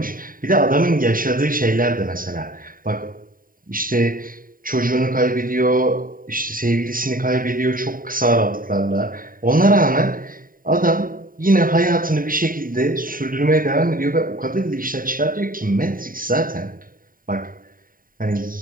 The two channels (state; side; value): late; left; 0.41 ms